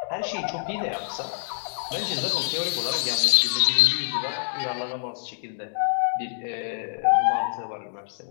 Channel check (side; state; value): right; silent; digital silence